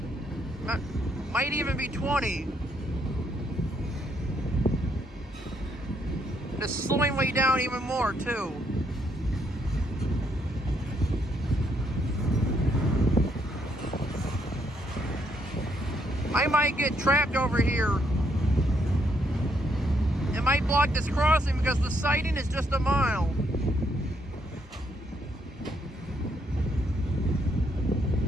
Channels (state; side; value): normal; both; correlation 0.74